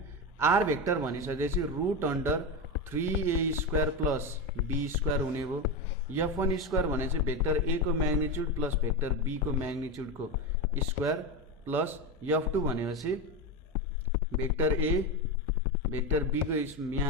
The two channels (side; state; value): both; normal; correlation 0.16